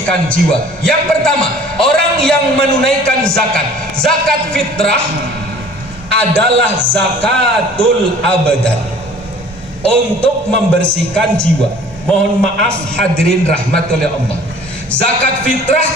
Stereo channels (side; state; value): both; normal; correlation 0.49